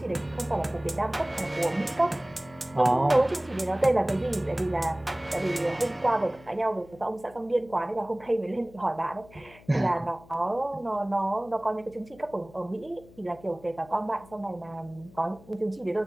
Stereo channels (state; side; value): noise; left; hum, 23 dB below the sound